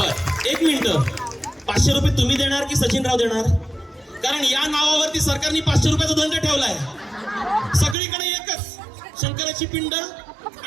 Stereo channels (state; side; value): drops out; left; at 8.0 s